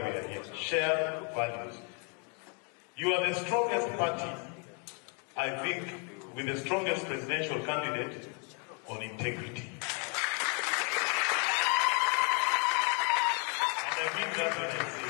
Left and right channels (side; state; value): right; quieter; 36.4 dB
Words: are here. Shared values. You are the strongest party, I think, with the strongest presidential candidate on integrity. And I mean that when I